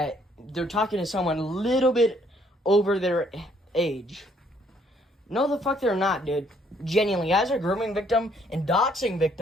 they're talking to someone a little bit over their age. No, the fuck they're not, dude. Genuinely, as a grooming victim and doxing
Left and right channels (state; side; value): normal; both; correlation 0.66